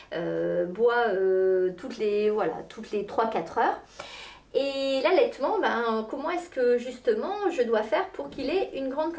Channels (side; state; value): both; identical; correlation 1.00